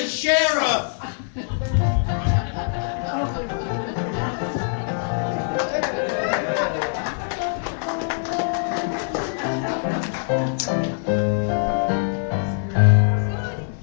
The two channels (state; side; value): silent; right; digital silence